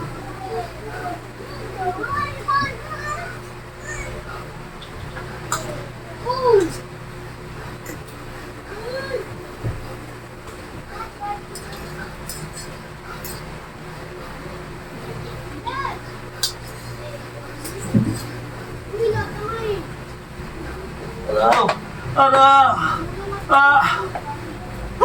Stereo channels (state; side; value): identical; both; correlation 1.00